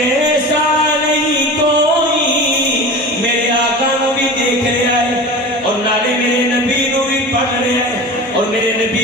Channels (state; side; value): noise; right; hum, 26 dB below the sound